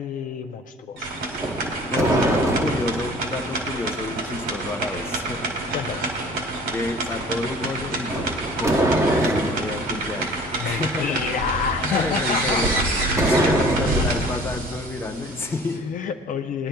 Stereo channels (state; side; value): normal; both; correlation 0.48